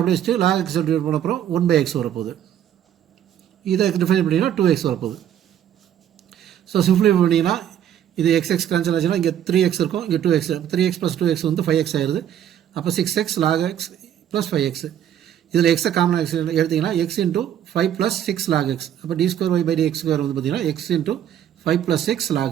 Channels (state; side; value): quieter; left; 10.3 dB